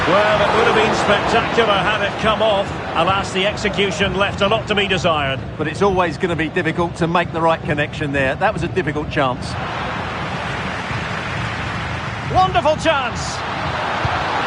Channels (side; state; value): both; identical; correlation 1.00